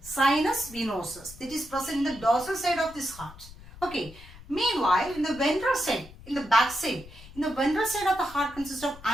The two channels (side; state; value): left; noise; rumble, 18 dB below the sound